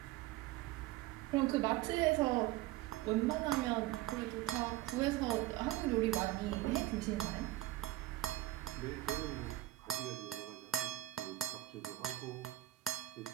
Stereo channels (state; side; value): quieter; left; 16.5 dB